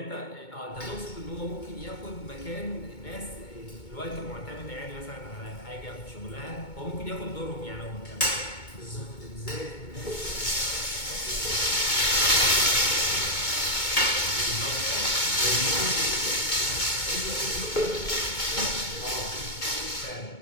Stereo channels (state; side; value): late; right; 2.2 ms